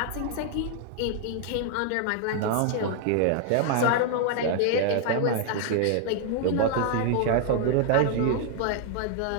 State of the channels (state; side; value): different; both; correlation 0.00